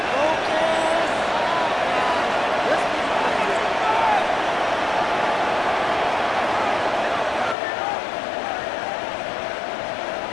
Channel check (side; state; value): right; drops out; at 7.6 s